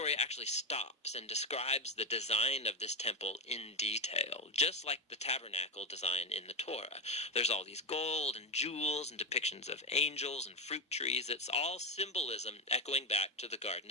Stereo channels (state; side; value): normal; both; correlation 0.11